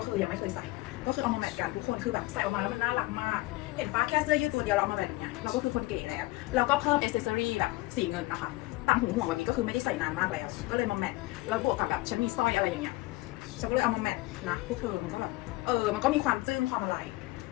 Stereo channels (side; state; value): right; quieter; 20.7 dB